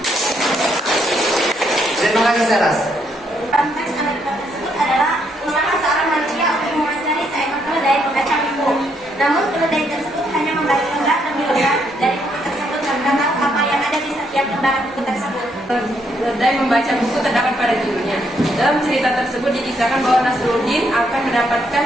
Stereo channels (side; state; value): both; normal; correlation 0.74